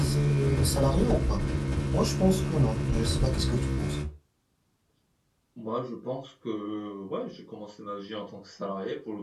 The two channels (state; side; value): identical; both; correlation 1.00